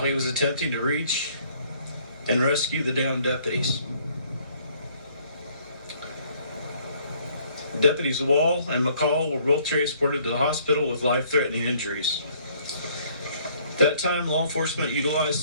was attempting to reach and rescue the downed deputies. Deputies Wall and McCall were both transported to the hospital with life-threatening injuries. At that time, law enforcement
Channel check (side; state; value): both; inverted; correlation -0.62